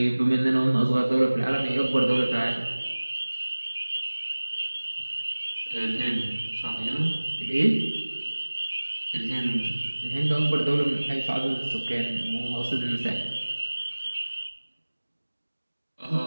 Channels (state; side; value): inverted; both; correlation -1.00